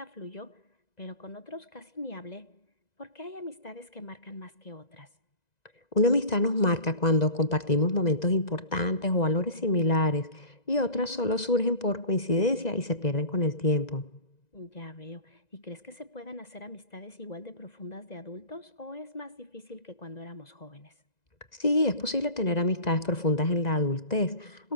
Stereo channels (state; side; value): late; right; 2.0 ms